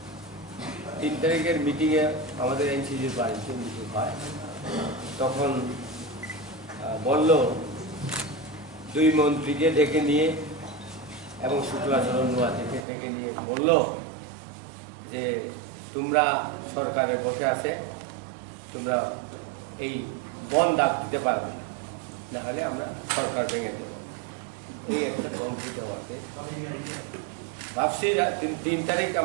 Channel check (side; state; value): left; drops out; at 12.9 s